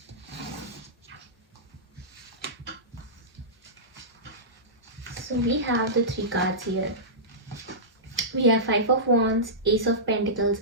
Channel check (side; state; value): both; normal; correlation -0.17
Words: So we have the 3 cards here. We have 5 of Wands, Ace of Pentacles